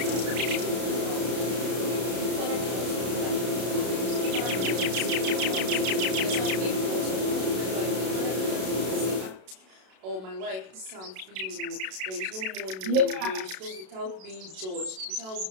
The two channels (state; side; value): late; left; 32 ms